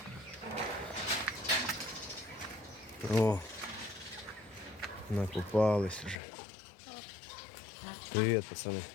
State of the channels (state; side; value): drops out; right; at 6.2 s